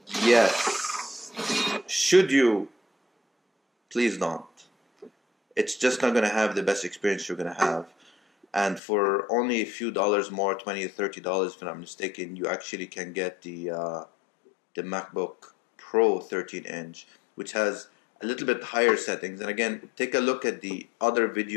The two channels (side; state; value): right; drops out; at 8.8 s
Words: Yes. Should you? Please don't. It's just not gonna have the best experience you're gonna have. And for only a few dollars more, $20 or $30 if I'm not mistaken, you actually can get the MacBook Pro 13-inch, which has a little bit higher settings. And again, take a look at the other